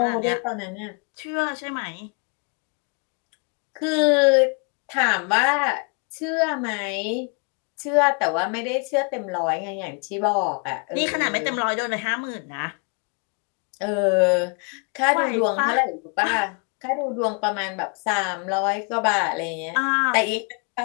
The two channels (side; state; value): right; quieter; 37.1 dB